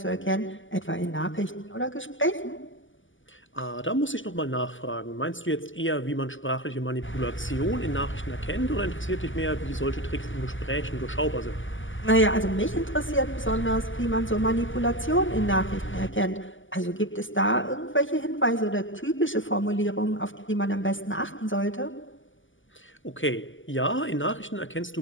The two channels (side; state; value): right; late; 0.57 ms